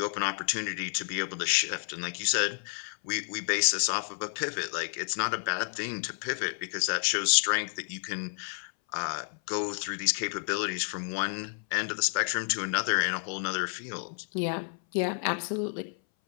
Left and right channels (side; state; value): right; silent; 58 dB below the other